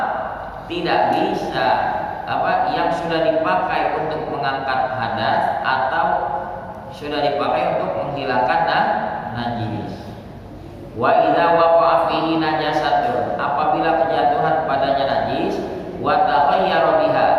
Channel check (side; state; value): both; identical; correlation 1.00